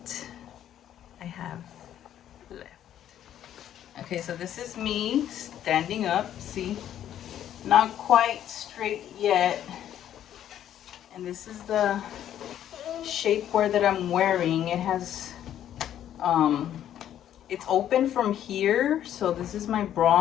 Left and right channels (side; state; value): right; quieter; 10.9 dB